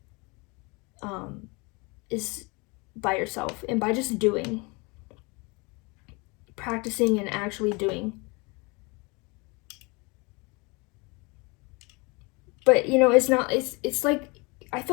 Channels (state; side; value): quieter; right; 28.2 dB